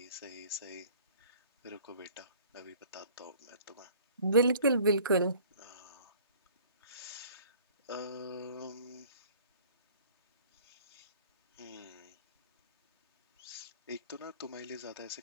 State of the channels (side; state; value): both; inverted; correlation -0.51